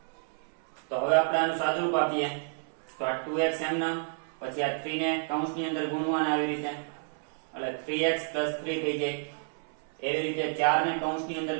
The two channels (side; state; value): left; silent; 58 dB below the other